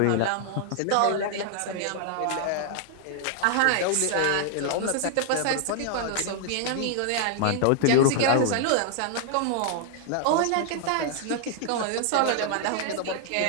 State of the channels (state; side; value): different; both; correlation 0.00